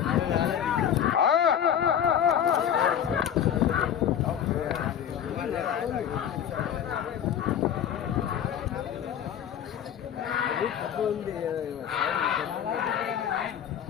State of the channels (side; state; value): right; quieter; 9.3 dB